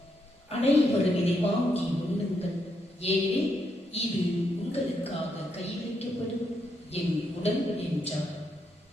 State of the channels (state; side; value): normal; both; correlation 0.79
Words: அனைவரும் இதை வாங்கி உண்ணுங்கள், ஏனெனில் இது உங்களுக்காக கையளிக்கப்படும் என் உடல் என்றார்.